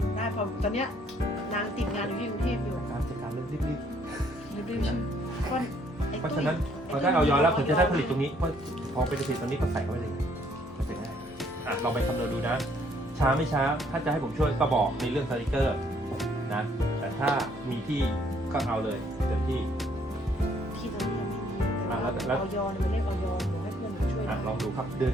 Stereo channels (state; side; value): normal; both; correlation 0.65